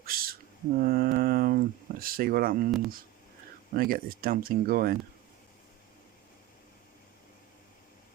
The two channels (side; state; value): left; quieter; 15.4 dB